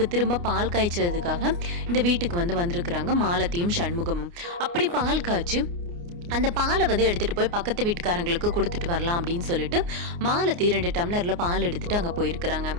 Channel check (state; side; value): late; left; 29 ms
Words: திரும்ப பால் காய்ச்சதுக்காக இந்த வீட்டுக்கு வந்திருக்கிறாங்க மாலதியும் சண்முகமும். அப்படி பால் காய்ச்சி அந்த பாலை எடுத்துகிட்டு போய் பக்கத்து வீட்டுக்காரங்களுக்கு கொடுத்துட்டு வரலாம் அப்படின்னு சொல்லிட்டு மாலதி 2 டம்ளரில் பால் எடுத்துகிட்டு அங்கே போயிருக்கிறாங்க.